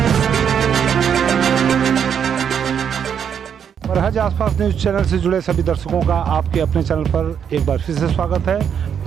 बरहज आसपास न्यूज़ चैनल से जुड़े सभी दर्शकों का आपके अपने चैनल पर एक बार फिर से स्वागत है।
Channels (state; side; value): quieter; left; 8.0 dB